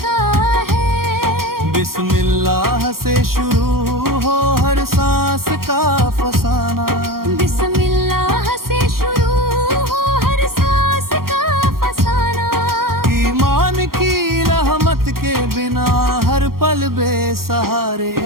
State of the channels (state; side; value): late; left; 0.93 ms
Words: है। बिस्मिल्लाह से शुरू हो हर सांस का फसाना, बिस्मिल्लाह से शुरू हो हर सांस का फसाना। ईमान की रहमत के बिना हर पल बेसहारे